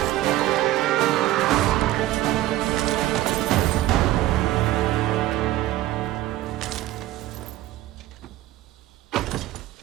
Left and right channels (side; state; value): left; quieter; 15.2 dB